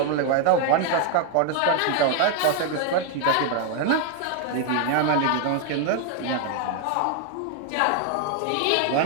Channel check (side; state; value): both; different; correlation 0.01